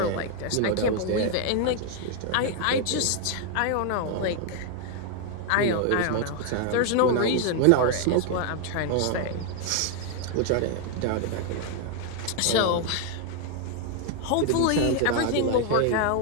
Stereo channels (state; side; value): different; both; correlation 0.00